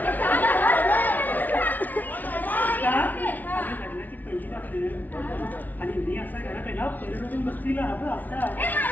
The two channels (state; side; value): late; right; 0.080 ms